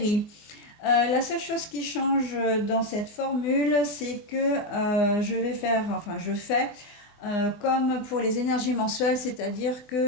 La seule chose qui change dans cette formule, c'est que je fais comme pour les énergies mensuelles, c'est-à-dire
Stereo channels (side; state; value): right; late; 24 ms